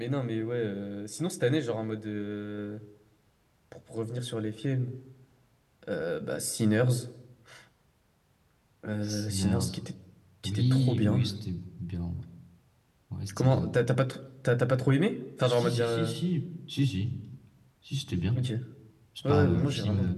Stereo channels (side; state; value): both; identical; correlation 1.00